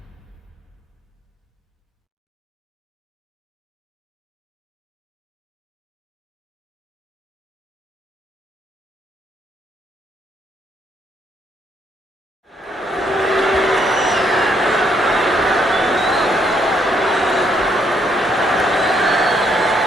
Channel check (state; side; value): normal; both; correlation 0.72